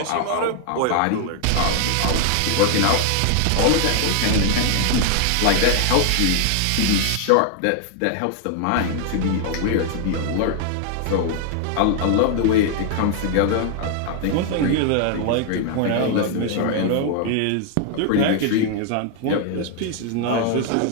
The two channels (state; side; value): different; both; correlation 0.00